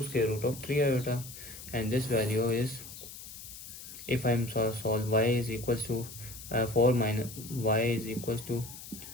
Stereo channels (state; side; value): noise; left; hiss, 13 dB below the sound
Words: square root of 3 iota, and this value is, if I'm solve y is equals to 4 minus y is equals to